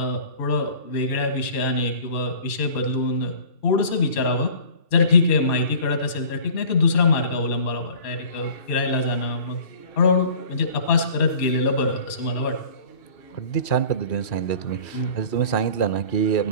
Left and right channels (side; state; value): right; late; 2.6 ms